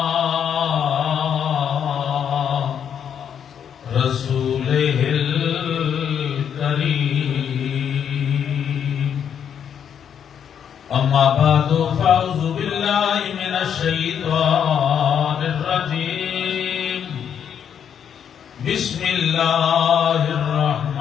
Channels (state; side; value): quieter; right; 8.3 dB